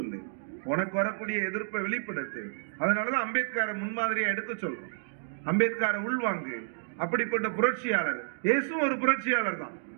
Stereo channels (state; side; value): silent; left; digital silence